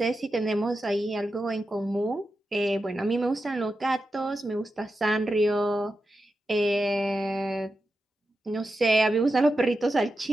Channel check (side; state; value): both; normal; correlation 0.89